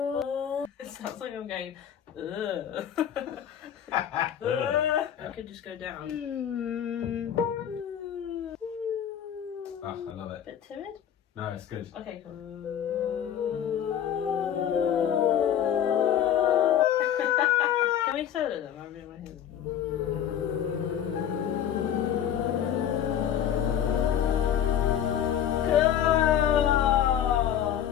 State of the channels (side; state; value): right; quieter; 9.7 dB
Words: It sounds like I'm going. Ugh. I could just go down. Oh, I love it. Bit timid. No, it's good. Okay, cool. Can we solo them? I'm doing my hands. Go!